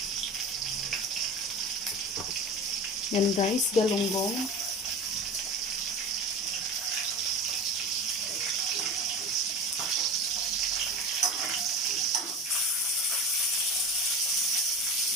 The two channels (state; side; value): normal; both; correlation 0.30